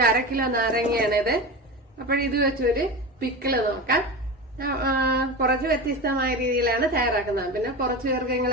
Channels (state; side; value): normal; both; correlation 0.25